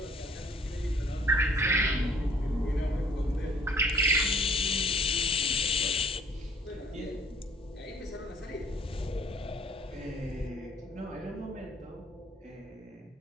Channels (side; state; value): both; normal; correlation 0.57